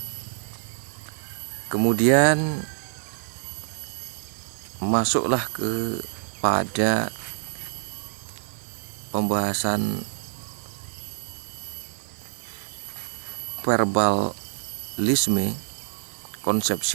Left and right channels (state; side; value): silent; left; digital silence